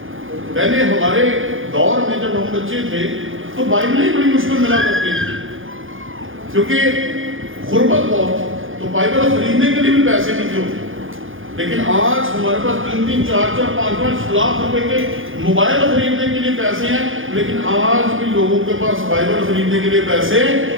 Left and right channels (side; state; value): left; late; 0.58 ms